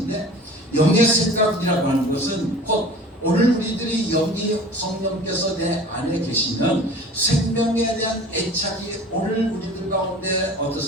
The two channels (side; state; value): both; normal; correlation 0.41